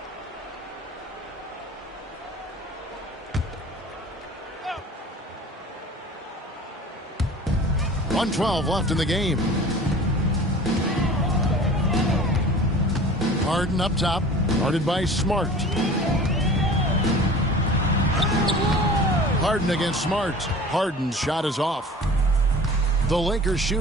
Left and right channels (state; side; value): normal; both; correlation 0.42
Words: .112 left in the game. Harden up top, guarded by Smart. Harden against Smart. Harden's shot is off. The Lakers